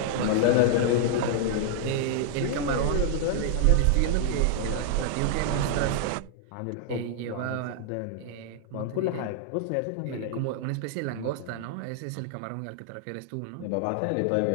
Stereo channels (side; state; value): both; different; correlation -0.01